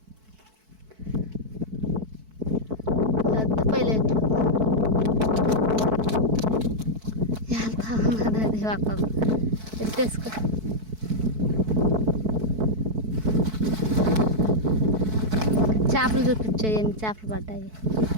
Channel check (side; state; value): left; late; 4.6 ms